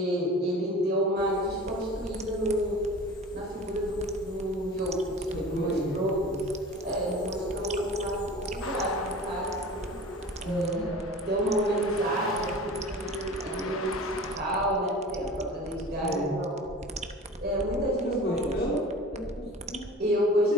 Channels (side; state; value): both; normal; correlation 0.39